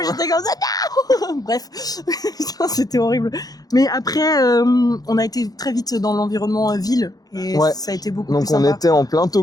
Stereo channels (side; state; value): right; late; 0.18 ms